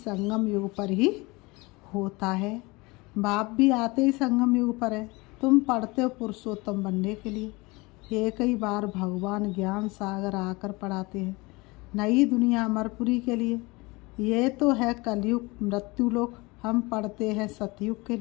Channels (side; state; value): right; quieter; 24.4 dB